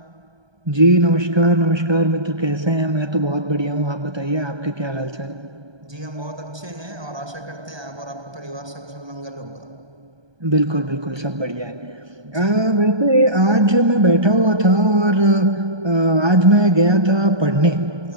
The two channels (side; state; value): left; late; 1.2 ms